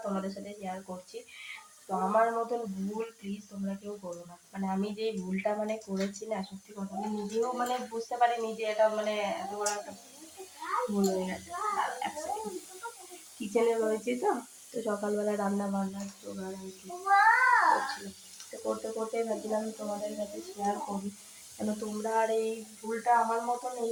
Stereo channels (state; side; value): identical; both; correlation 1.00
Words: তোমাদের সাথে শেয়ার করছি। তো আমার মতন ভুল প্লিজ তোমরা কেউ করো না। মানে আমি যে ভুলটা করেছি না, সত্যি কথা আমি নিজেও বুঝতে পারিনি যে এটা এত বড় একটা ভুল হয়ে গেছে। কিচেনে রয়েছে তো, তো সকালবেলা রান্না বান্নার জোগাড় আর কি করছিলাম। তো করতে করতে ভাবছিলাম তোমাদের কাছে শেয়ার করি, কেন তোমরা আর এই ভুলটা আমার মতন এই